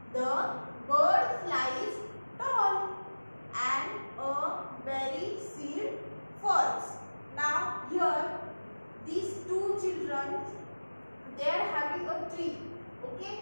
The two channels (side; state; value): both; inverted; correlation -1.00